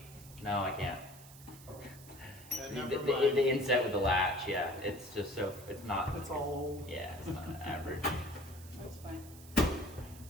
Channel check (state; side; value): noise; right; hiss, 19 dB below the sound